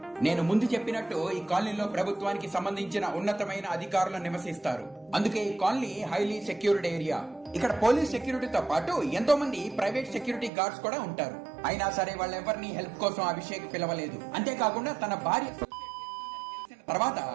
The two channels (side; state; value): left; drops out; at 10.5 s